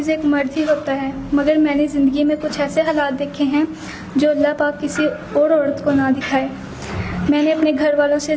ایک مرد ہی ہوتا ہے، مگر میں نے زندگی میں کچھ ایسے حالات دیکھے ہیں جو اللہ پاک کسی اور عورت کو نہ دکھائے۔ میں نے اپنے گھر والوں سے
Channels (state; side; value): identical; both; correlation 1.00